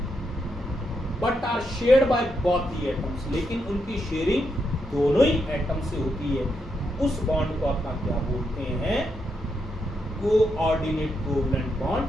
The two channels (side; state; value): both; normal; correlation 0.81